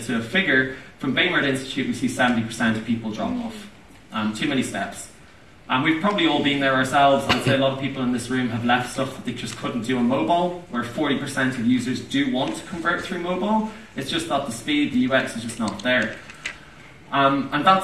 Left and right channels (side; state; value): both; identical; correlation 1.00